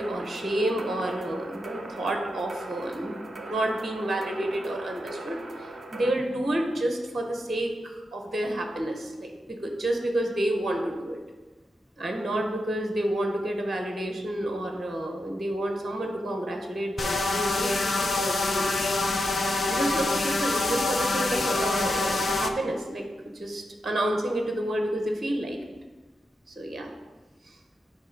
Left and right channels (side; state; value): both; normal; correlation 0.86